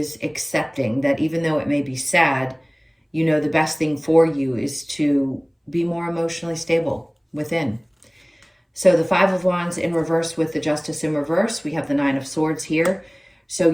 accepting that even though it may be sad, you know the best thing for you is to be more emotionally stable within. So the Five of Wands in reverse with the Justice in reverse. We have the Nine of Swords here. So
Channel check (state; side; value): identical; both; correlation 1.00